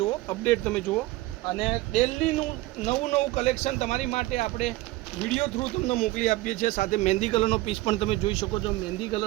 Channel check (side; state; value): left; quieter; 18.6 dB